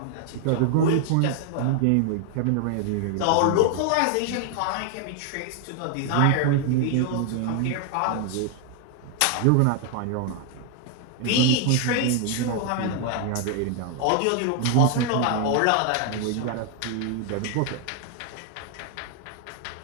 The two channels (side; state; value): both; different; correlation 0.00